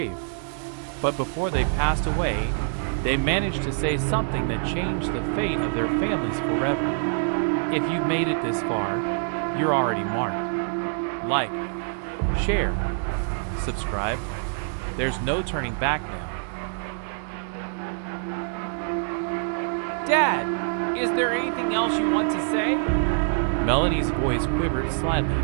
But before they passed away, they managed to say something that changed the fate of their families forever. If you've made it this far, you're already marked. Like, share, subscribe. There's no turning back now. Dad, is there anything else you want to say? Melanie's voice quivered slightly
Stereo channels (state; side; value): silent; left; digital silence